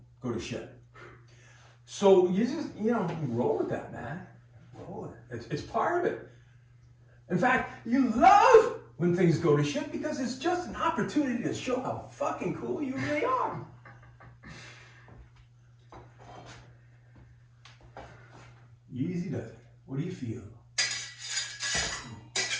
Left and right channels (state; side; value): identical; both; correlation 1.00